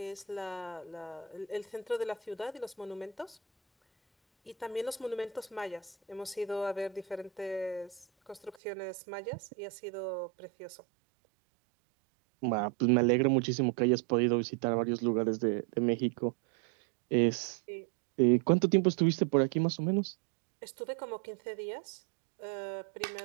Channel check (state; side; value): drops out; left; at 8.6 s